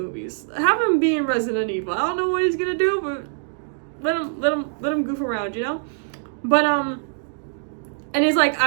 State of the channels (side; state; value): left; silent; digital silence